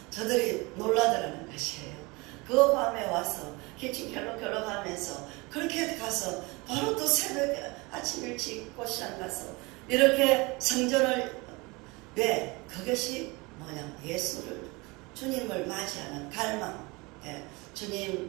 저들이 놀라더라는 것이에요. 그 밤에 와서 기침 결럭결럭 하면서 그렇게 가서 바로 또 새벽에 아침 일찍 꽃시장 가서 이렇게 성전을 왜? 그것이 뭐냐? 예수를 주님을 맞이하는 갈망. 예.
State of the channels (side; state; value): left; quieter; 25.3 dB